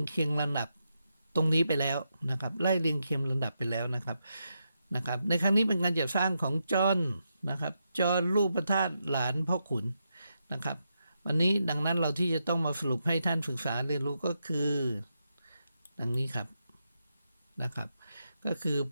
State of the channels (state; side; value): inverted; both; correlation -0.84